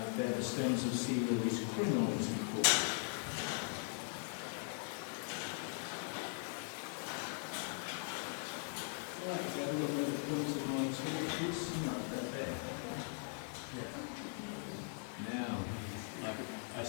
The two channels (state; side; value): silent; right; 51 dB below the other